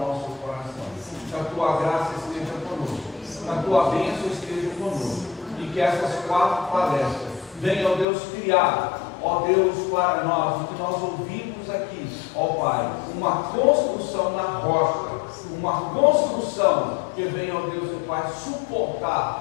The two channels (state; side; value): drops out; right; at 8.1 s